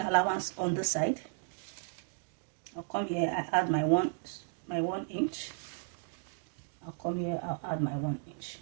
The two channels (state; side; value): silent; left; 55 dB below the other